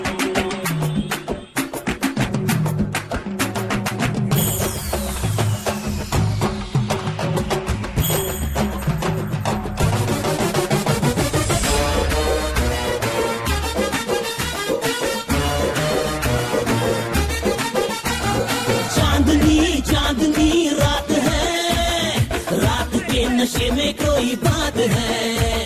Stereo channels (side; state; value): both; identical; correlation 1.00